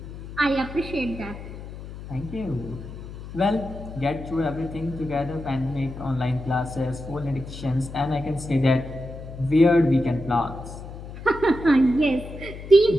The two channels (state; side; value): noise; left; hum, 12 dB below the sound